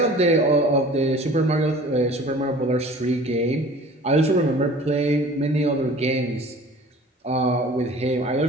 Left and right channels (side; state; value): both; normal; correlation 0.45